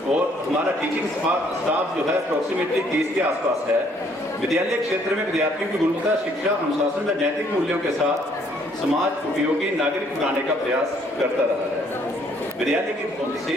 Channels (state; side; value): normal; both; correlation 0.65